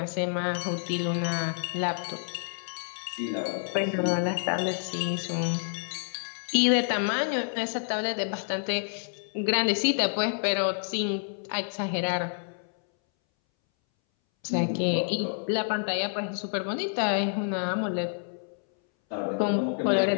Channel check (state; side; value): silent; right; 59 dB below the other